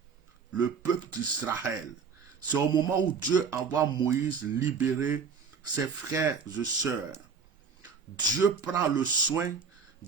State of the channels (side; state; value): left; quieter; 5.8 dB